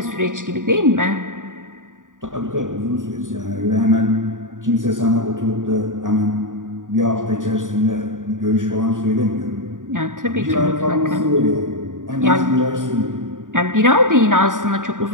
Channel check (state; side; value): late; left; 0.88 ms